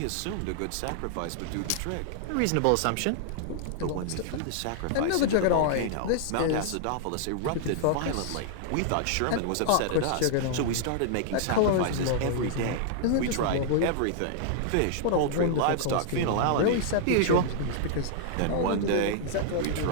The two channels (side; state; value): both; different; correlation -0.01